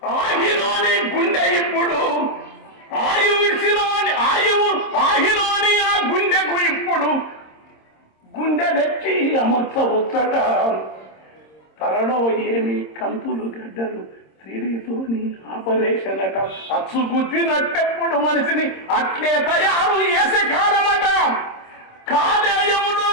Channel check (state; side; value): late; right; 26 ms